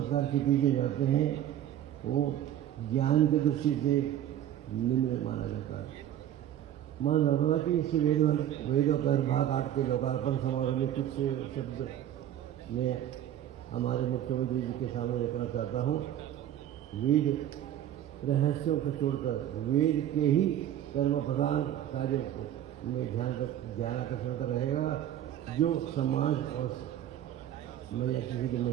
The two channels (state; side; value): quieter; left; 11.5 dB